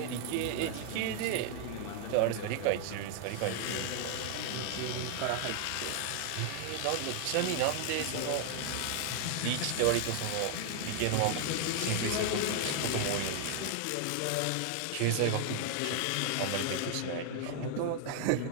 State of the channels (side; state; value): both; different; correlation 0.00